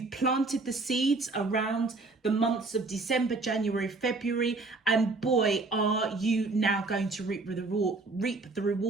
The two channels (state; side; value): quieter; left; 3.5 dB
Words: planted the seeds around the months of December, January, February, and boy, are you now going to reap the